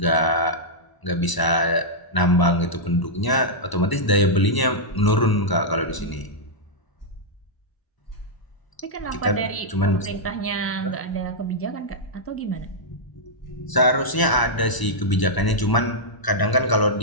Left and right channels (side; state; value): right; late; 1.0 ms